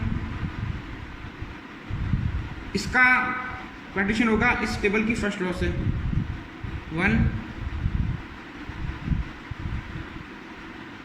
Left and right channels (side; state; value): both; identical; correlation 1.00